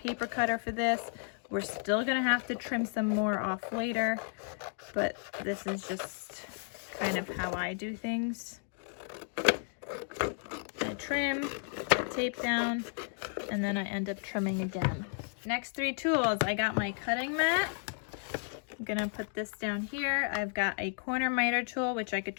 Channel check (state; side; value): silent; right; 56 dB below the other